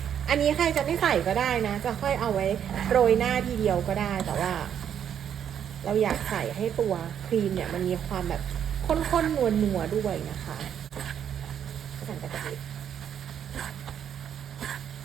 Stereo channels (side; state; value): left; quieter; 8.9 dB